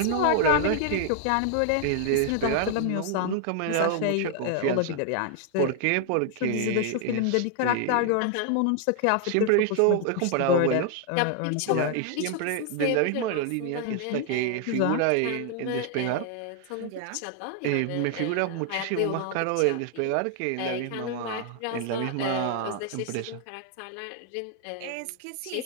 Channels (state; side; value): different; both; correlation 0.00